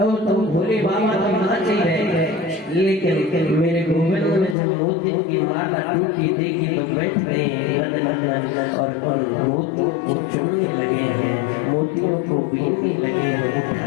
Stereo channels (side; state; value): right; drops out; at 4.5 s